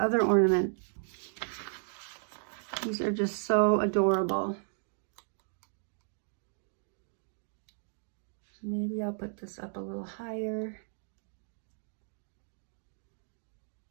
other ornament. These are just so adorable. Maybe I'll put this up a little higher.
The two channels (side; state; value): left; silent; digital silence